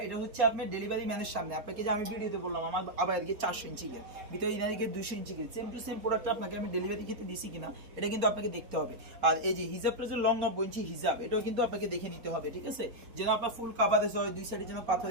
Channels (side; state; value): left; late; 4.1 ms